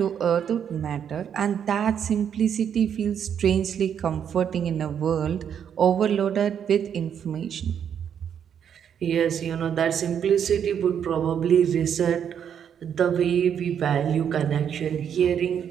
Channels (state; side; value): quieter; left; 8.4 dB